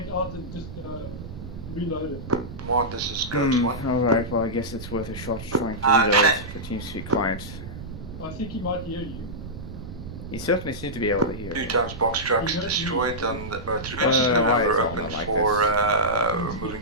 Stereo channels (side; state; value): right; noise; rumble, 11 dB below the sound